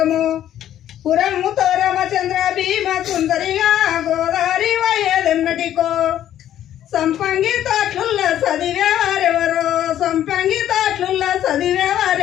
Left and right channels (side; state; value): right; quieter; 11.5 dB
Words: పురముతో రామచంద్ర భీమ సుందరిగా గోదావరి వయ్యేదెన్నటికో సంపంగి తాట్లుల్ల చదివేవారెవరో సంపంగి తాట్లుల్ల